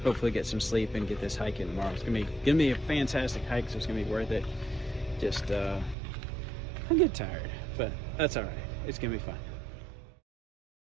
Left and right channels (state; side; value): drops out; left; at 6.0 s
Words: hopefully get some sleep and get this hike in tomorrow. It's gonna be a fantastic hike, so it's gonna be worth it. Just I get tired, but that's all right. It's gonna be fun.